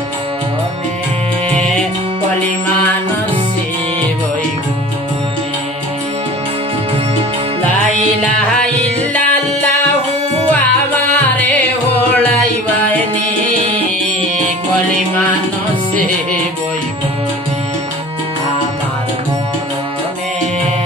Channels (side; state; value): both; normal; correlation 0.42